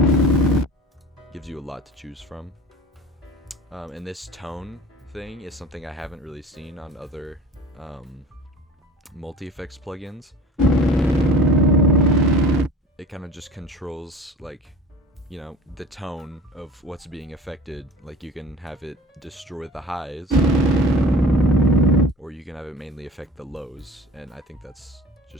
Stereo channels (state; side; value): normal; both; correlation 0.39